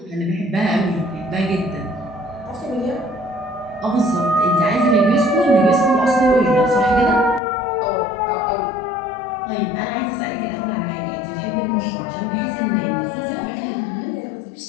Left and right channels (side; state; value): right; drops out; at 7.4 s